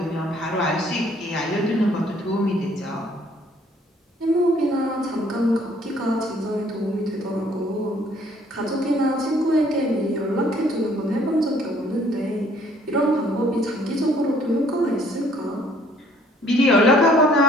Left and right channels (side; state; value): both; normal; correlation 0.61